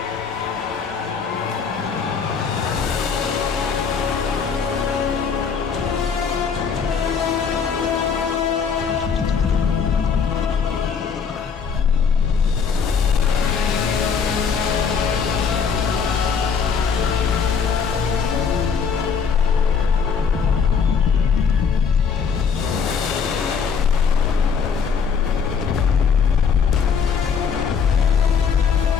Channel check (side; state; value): right; quieter; 6.3 dB